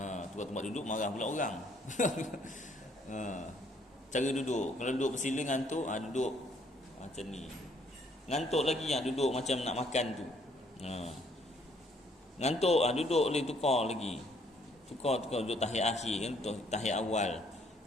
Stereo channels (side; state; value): both; normal; correlation 0.65